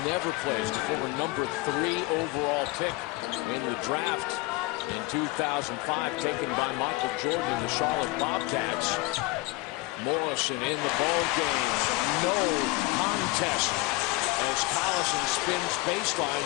never plays. The former number 3 overall pick in the draft in 2005, taken by Michael Jordan and the Charlotte Bobcats. Morrison in the ball game. No contest as Collison spins baseline,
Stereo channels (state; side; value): quieter; right; 21.7 dB